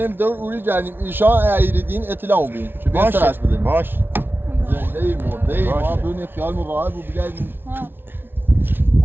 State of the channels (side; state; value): left; late; 0.10 ms